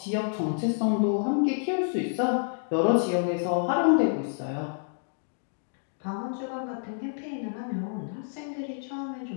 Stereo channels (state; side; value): silent; right; digital silence